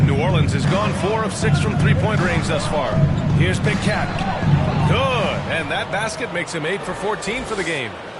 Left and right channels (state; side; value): identical; both; correlation 1.00